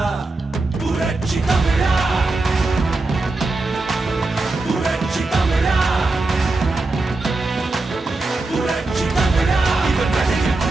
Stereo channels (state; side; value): quieter; left; 3.2 dB